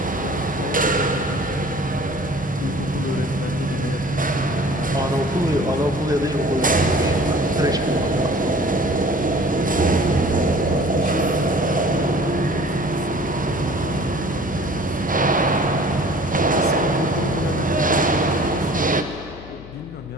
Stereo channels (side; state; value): left; noise; hum, 17 dB below the sound